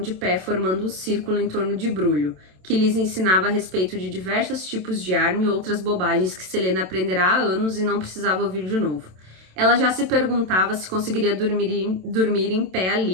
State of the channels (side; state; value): left; late; 27 ms